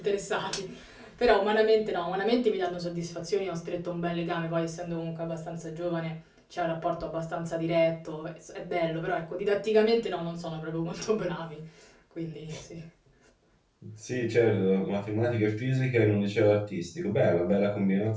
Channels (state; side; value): identical; both; correlation 1.00